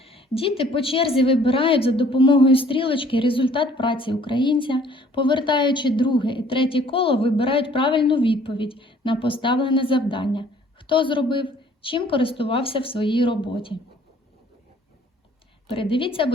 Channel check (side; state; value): both; normal; correlation 0.57